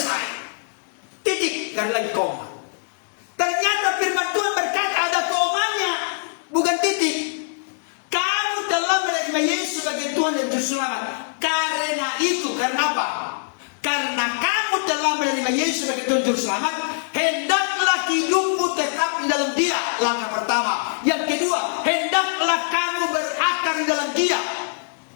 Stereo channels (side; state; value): right; silent; digital silence